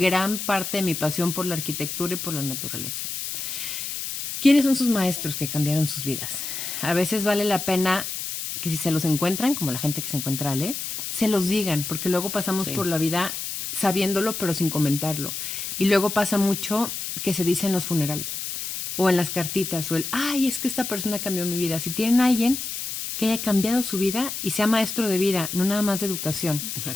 parte de mi pasión por la arquitectura y por la naturaleza. ¿Quiénes son sus maestros que cambiaron sus vidas? A veces vale la pena que si se los encuentran, como la gente que se encuentra a Ale, se los digan, porque luego pasamos por la vida sabiéndolo pero sin comentarlo. Y luego pasa mucho que se dice en los funerales o en las cartitas o es que esta persona cambió mi vida. Si tienen a alguien que haya cambiado su vida y sea maestro de vida, no nada más de educación,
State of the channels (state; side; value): noise; left; hiss, 5 dB below the sound